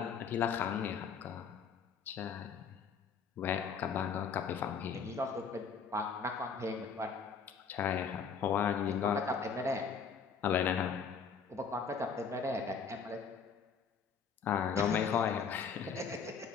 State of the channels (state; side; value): quieter; right; 6.1 dB